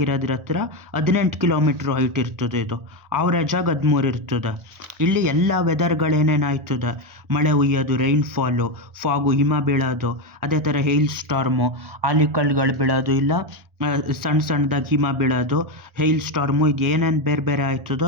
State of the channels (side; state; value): left; late; 1.4 ms